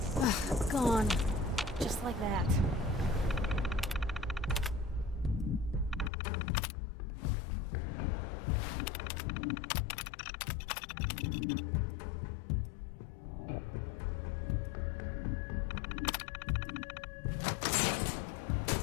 Ugh, gone. Just like that.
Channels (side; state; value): right; drops out; at 6.1 s